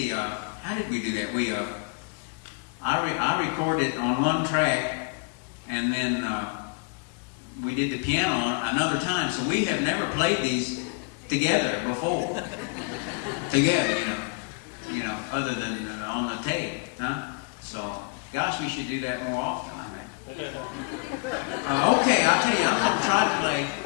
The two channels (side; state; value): right; quieter; 34.3 dB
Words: how did we do that? I recorded on one track, and then we did the piano on another time. So we have never played these together before. Together, you know, other than on the tape, huh? So, gosh, we should do that more often. Okay, I'll tell you, I'm going to try to play